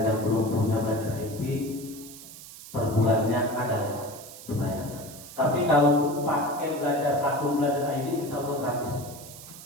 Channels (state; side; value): noise; right; hiss, 15 dB below the sound